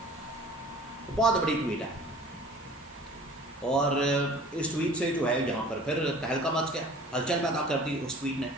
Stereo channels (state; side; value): normal; both; correlation 0.46